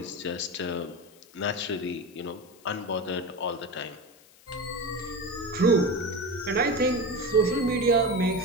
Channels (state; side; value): noise; left; hiss, 26 dB below the sound